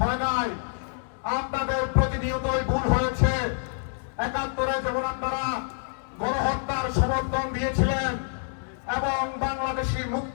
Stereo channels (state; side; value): silent; right; digital silence